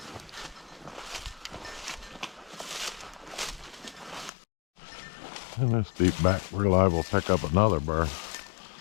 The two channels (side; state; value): right; drops out; at 4.3 s